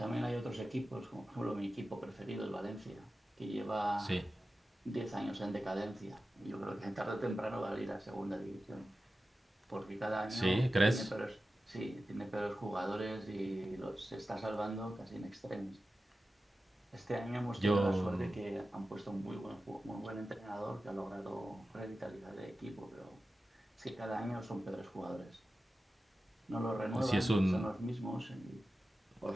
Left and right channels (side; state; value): both; normal; correlation 0.94